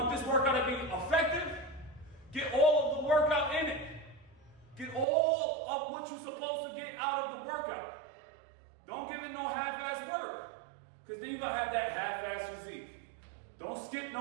this workout to be effective? Get all of the workout in it. Get all of what you're supposed to get out of the workout. Don't give it no half-ass work, because then you're gonna have that half-ass physique. Don't skip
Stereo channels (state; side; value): drops out; left; at 5.1 s